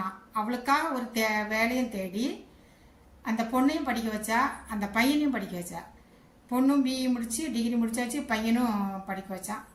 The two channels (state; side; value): identical; both; correlation 1.00